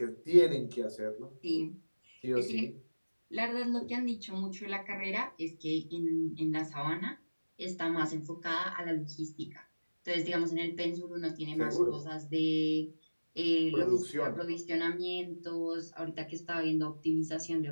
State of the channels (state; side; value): inverted; both; correlation -1.00